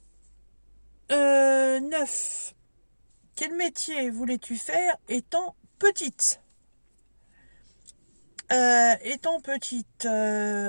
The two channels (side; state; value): both; inverted; correlation -1.00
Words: 9. Quel métier voulais-tu faire étant petite? Étant petite,